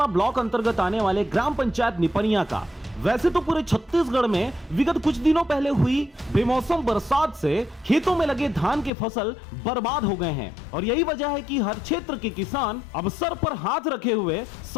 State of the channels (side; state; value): right; drops out; at 8.9 s